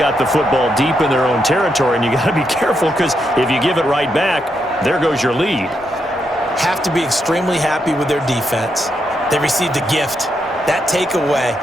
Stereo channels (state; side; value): normal; both; correlation 0.81